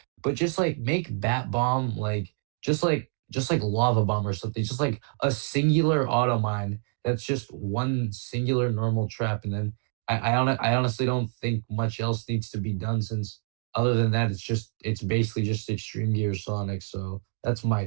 but just like make bat bomb like just like lava bomb or something. Just like a singular auto mine that's just one singular normal trap, and then I honestly don't think much else needs to be done since other than that it's basically just extreme gear Sonic. So that's my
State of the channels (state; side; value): silent; left; 55 dB below the other